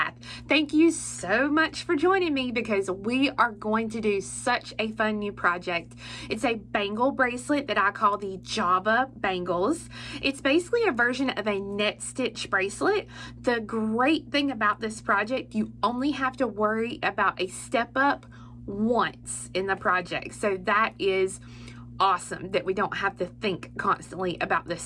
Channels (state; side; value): identical; both; correlation 1.00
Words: Thank you so much for joining me because we are going to do such a fun new project. It's a bangle bracelet that I call the Java Bangles. It's basically a version of a net stitch bracelet. The great thing about this project, you only have to worry about a step up once in the project. So that is awesome that we don't have to think constantly about this